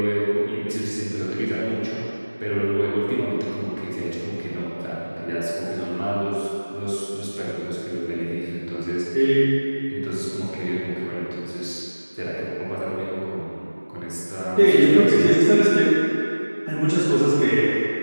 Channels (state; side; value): inverted; both; correlation -1.00